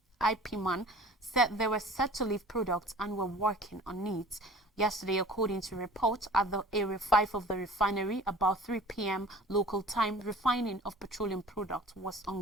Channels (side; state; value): both; normal; correlation 0.45